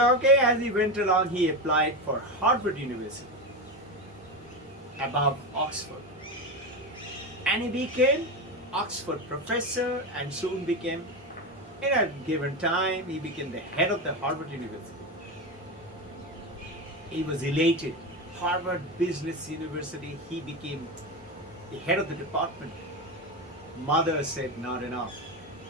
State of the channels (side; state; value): both; normal; correlation 0.17